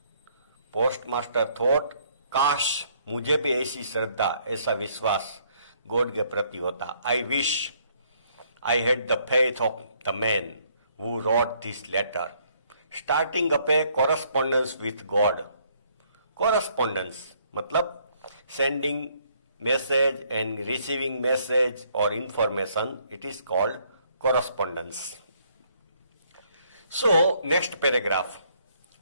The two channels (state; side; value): inverted; both; correlation -0.67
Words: Postmaster thought, काश मुझे भी ऐसी श्रद्धा, ऐसा विश्वास गॉड के प्रति होता. I wish I had the faith of the man who wrote this letter, starting up a correspondence with God. Correspondence मतलब sending message and receiving message or information. It is called correspondence. So next paragraph